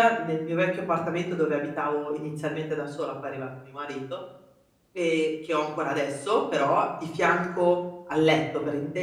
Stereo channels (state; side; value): identical; both; correlation 1.00